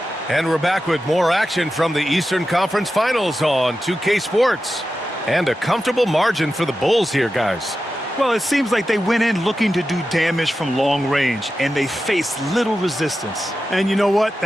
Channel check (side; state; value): both; normal; correlation 0.92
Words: And we're back with more action from the Eastern Conference Finals on 2K Sports. And a comfortable margin for the Bulls here, guys. Well, it seems like they went in looking to do damage from long range, and they faced little resistance. And you know what?